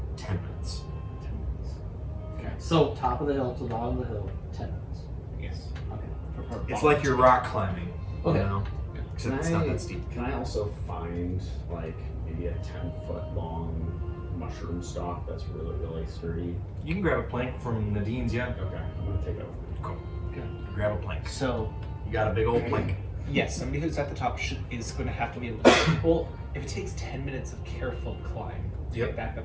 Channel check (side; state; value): both; identical; correlation 1.00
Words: 10 minutes. So top of the hill to the bottom of the hill, 10 minutes. Yes. Okay. It's like you're rock climbing. Okay. You know? Except it's not that steep. Can I also find like maybe a 10-foot long mushroom stalk that's really, really sturdy? You can grab a plank from Nadine's, yeah. Okay, I'm gonna take it with me. Cool. Grab a plank. So, You got a big old plank. yes, somebody who's at the top is going to have to be able to. Well, if it takes 10 minutes of careful climb to Yep. get back